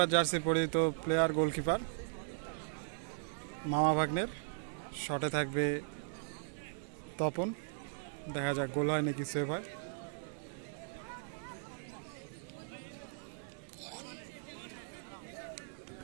জার্সি পরিহিত প্লেয়ার গোলকিপার মামা ভাগ্নের। শটে থাকবে তপন। দেখা যাক গোল হয় নাকি সেভ হয়।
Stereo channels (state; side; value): silent; left; 52 dB below the other